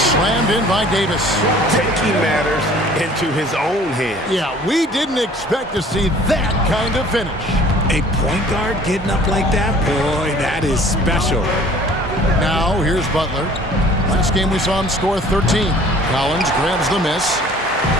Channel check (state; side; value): normal; both; correlation 0.51